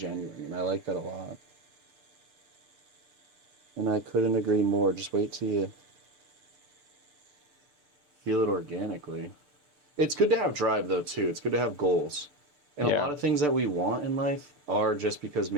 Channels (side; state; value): left; late; 6.8 ms